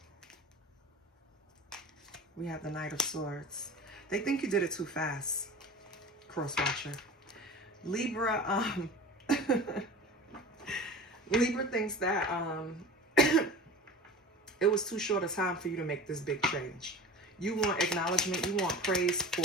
We have the Knight of Swords. They think you did it too fast, Cross-watcher. Libra, Libra thinks that it was too short a time for you to make this big change. You want acknowledgement. You want praise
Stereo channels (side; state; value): both; normal; correlation 0.35